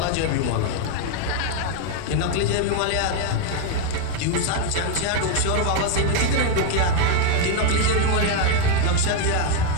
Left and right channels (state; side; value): different; both; correlation 0.01